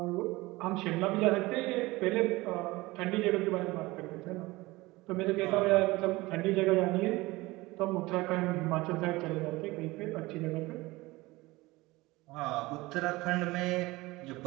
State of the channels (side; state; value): left; quieter; 20.8 dB